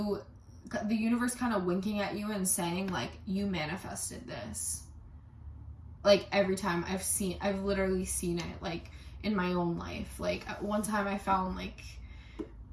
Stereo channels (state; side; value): identical; both; correlation 1.00